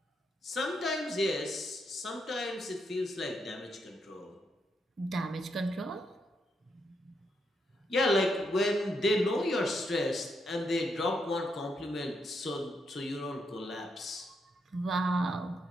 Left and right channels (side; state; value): both; normal; correlation 0.80